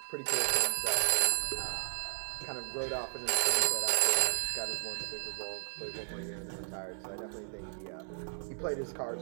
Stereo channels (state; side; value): silent; left; 55 dB below the other